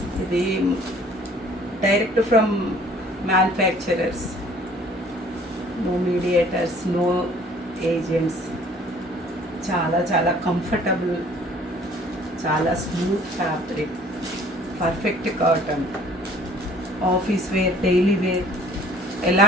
ఇది direct from manufacturers, no mediators, no agents. చాలా చాలా కంఫర్టబుల్, చాలా smooth fabric, perfect cotton. Office wear, daily wear ఎలా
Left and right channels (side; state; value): both; normal; correlation 0.54